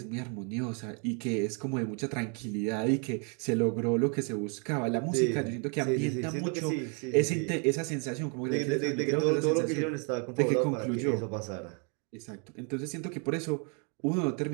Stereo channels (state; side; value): quieter; left; 37.5 dB